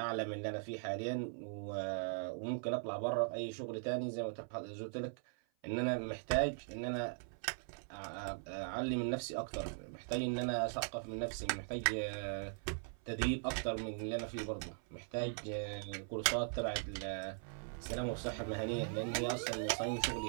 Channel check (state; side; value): silent; left; 51 dB below the other